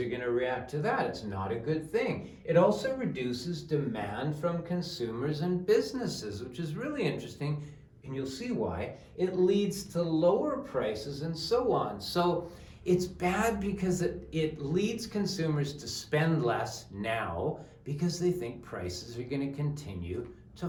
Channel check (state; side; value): identical; both; correlation 1.00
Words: going to react to that. It's not a good thing. It also reduces demand from consumers and businesses, which is really interesting, and you'll see why. It leads to lower prices and so on. So it's bad because it leads consumers to spend less now because they think prices are going to continue to